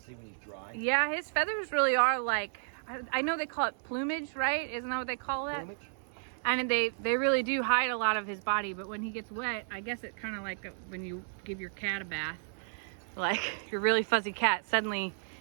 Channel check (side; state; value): left; silent; digital silence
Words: see when he's dry? Yeah, his feathers really are like, I know they call it plumage, right? Isn't that what they call that? Plumage? And they really do hide a lot of his body, but when he gets wet, I guess it's kind of like when you give your cat a bath. Like your really fuzzy cat, suddenly